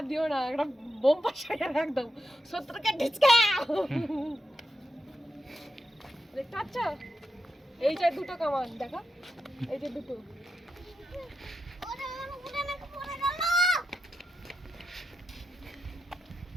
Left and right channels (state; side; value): normal; both; correlation 0.87